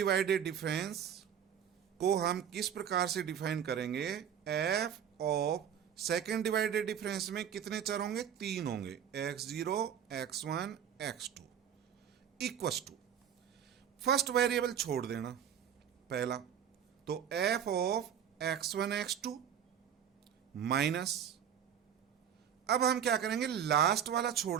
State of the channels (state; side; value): quieter; left; 8.9 dB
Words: डिफरेंस को हम किस प्रकार से डिफाइन करेंगे, F of second divided difference में कितने चर होंगे, 3 होंगे, x0, x1, x2 equals to, first variable छोड़ देना पहला, तो f of x1, x2 minus, अब हम क्या करेंगे, लास्ट वाला